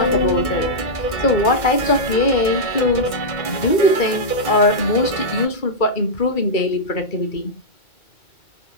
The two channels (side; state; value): right; late; 2.3 ms